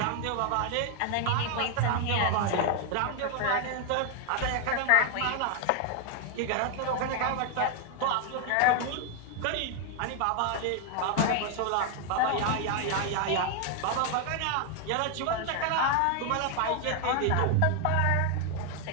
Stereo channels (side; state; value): both; different; correlation 0.01